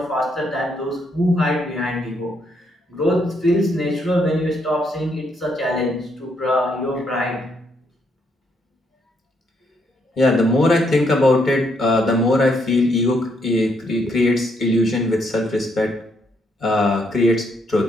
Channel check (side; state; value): both; normal; correlation 0.74